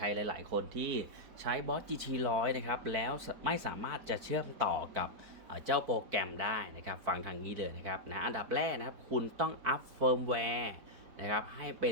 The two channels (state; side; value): late; left; 4.6 ms